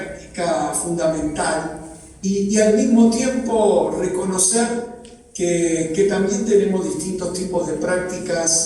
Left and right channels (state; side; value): identical; both; correlation 1.00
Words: fundamental. Y al mismo tiempo reconocer que también tenemos distintos tipos de